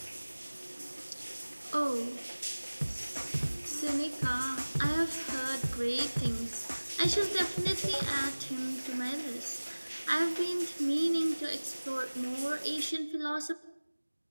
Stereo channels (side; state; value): both; inverted; correlation -1.00